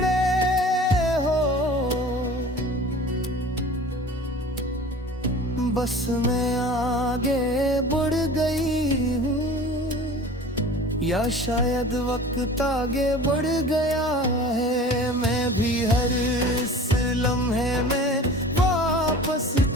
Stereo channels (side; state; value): both; normal; correlation 0.41